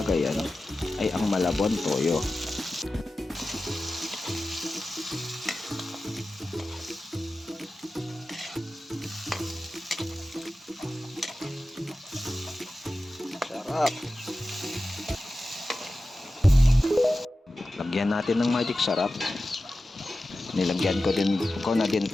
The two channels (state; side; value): normal; both; correlation 0.94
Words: ay ang Malabon toyo. Sarap! Lagyan natin ng magic sarap. Nilagyan ko na din